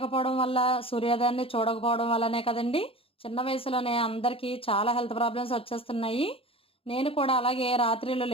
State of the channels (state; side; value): late; right; 0.27 ms